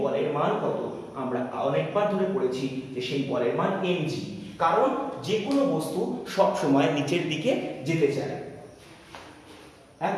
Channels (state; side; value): identical; both; correlation 1.00